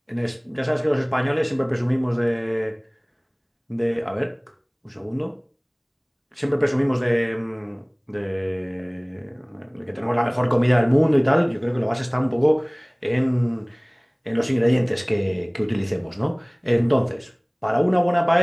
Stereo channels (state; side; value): identical; both; correlation 1.00